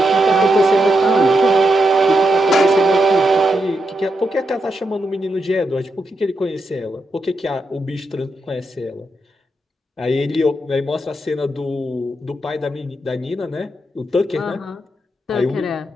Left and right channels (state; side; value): normal; both; correlation 0.83